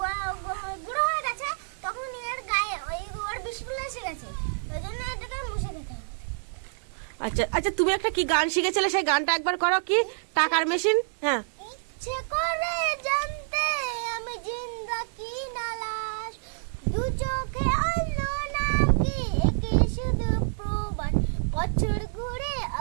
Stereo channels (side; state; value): left; silent; digital silence